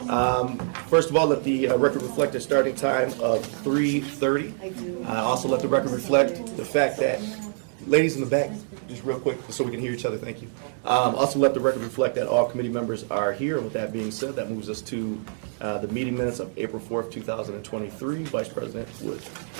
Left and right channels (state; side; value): silent; left; digital silence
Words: First of all, let the record reflect a starting time of 3:30. Also, let the record reflect the fact that, ladies in the back, just real quick, so we can hear each other, thank you. Also, let the record reflect that all committee members are here. With that being said, that moves us to the meeting minutes of April 4th, 2023. Vice President Wood,